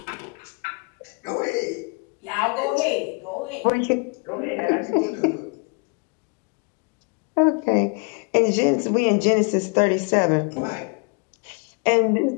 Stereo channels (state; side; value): quieter; right; 34.4 dB